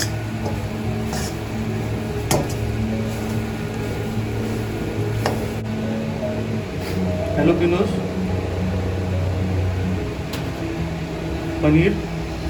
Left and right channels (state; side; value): identical; both; correlation 1.00